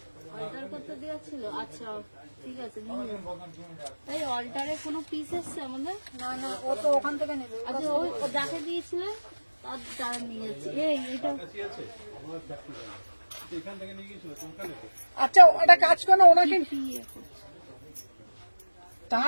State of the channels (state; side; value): inverted; both; correlation -1.00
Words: অল্টার করতে দেওয়া ছিল। আচ্ছা ঠিক আছে, এই অল্টারে কোনো পিস এসছে আমাদের? না না, ও তো ওখান থেকে নেবে। আচ্ছা ওই ও যাকে দিয়েছিলেন তার দ্বারা নিয়ে যাচ্ছি। এই এটা আচ্ছা একটা কাজ করো, ওনাকে কি এখন?